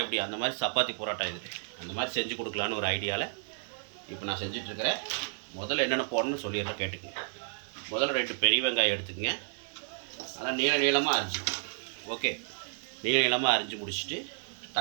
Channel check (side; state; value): left; silent; 56 dB below the other